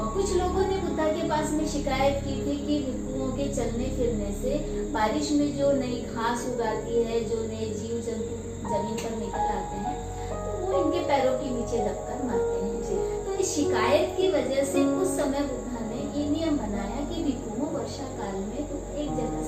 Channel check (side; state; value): both; identical; correlation 1.00